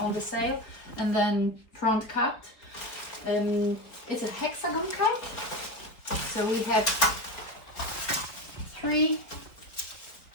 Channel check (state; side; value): late; right; 4.3 ms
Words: the sail and then front cut. It's a hexagon kite. So we have 3